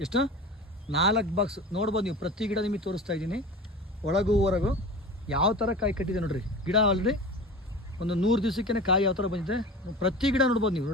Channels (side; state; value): both; normal; correlation 0.34